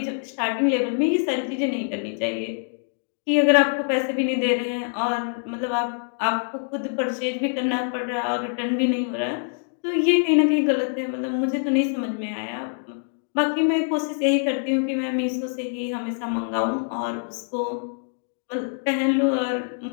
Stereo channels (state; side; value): silent; right; digital silence